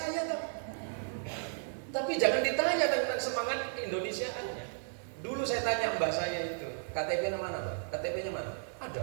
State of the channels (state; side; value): silent; left; digital silence